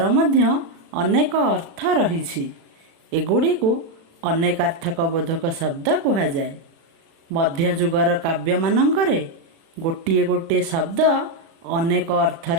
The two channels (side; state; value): left; late; 36 ms